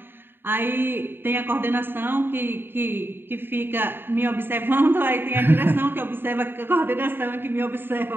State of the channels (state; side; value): late; left; 0.10 ms